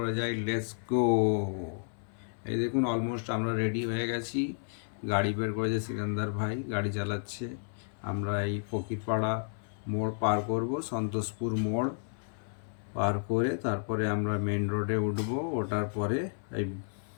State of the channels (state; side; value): silent; right; 57 dB below the other